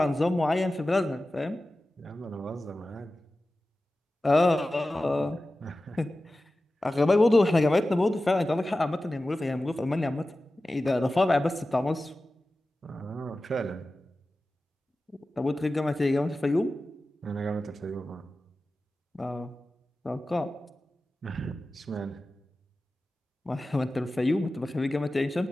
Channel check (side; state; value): both; normal; correlation 0.95